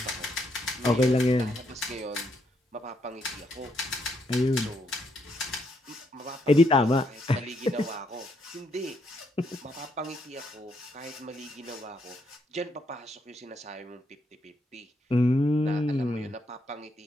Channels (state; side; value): normal; both; correlation 0.75